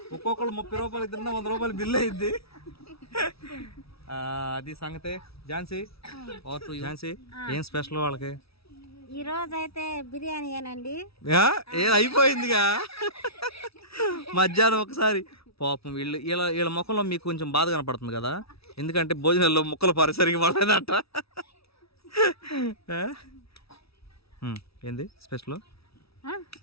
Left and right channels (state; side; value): late; right; 0.76 ms